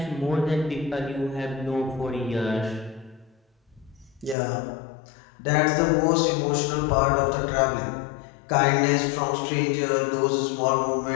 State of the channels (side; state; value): right; drops out; at 4.4 s